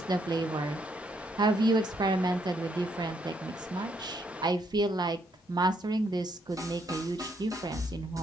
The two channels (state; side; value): normal; both; correlation 0.73